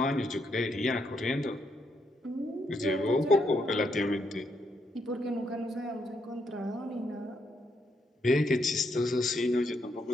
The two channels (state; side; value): normal; both; correlation 0.77